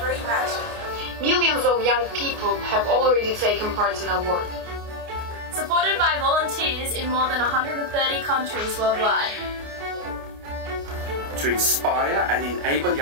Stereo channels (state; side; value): late; left; 29 ms